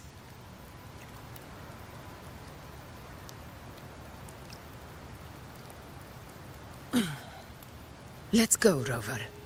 Let's go, Rover.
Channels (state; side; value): identical; both; correlation 1.00